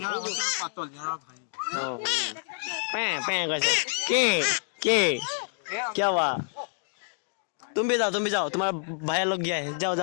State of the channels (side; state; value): right; silent; digital silence